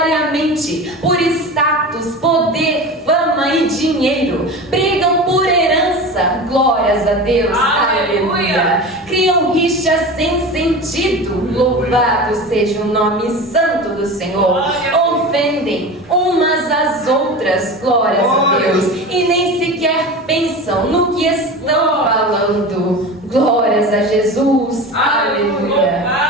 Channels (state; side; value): normal; both; correlation 0.31